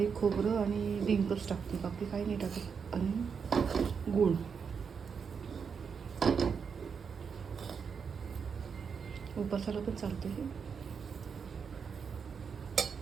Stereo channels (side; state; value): left; quieter; 6.2 dB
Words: खोबरं आणि डिंकच टाकते, बाकी काही नाही टाकत. आणि गूळ. उपासाला पण चालते हे.